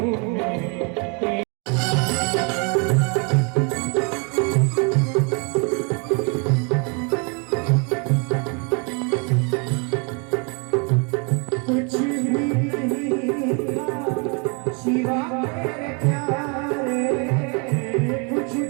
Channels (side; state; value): left; quieter; 34.8 dB